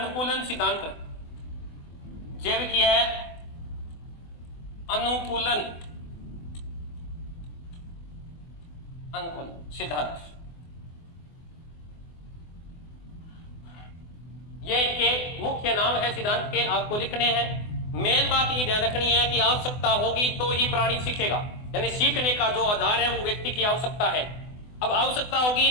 सिद्धांत। जैविकीय अनुकूलन सिद्धांत। ये इनके मुख्य नाम है सिद्धांत के, आपको लिखने हैं। मेन बात ये ध्यान रखनी है कि आवश्यकता होगी तो ही प्राणी सीखेगा, यानी सीखने का जो आधार है वो व्यक्ति की आवश्यकता है। अब आवश्यकता होगी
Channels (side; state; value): right; late; 24 ms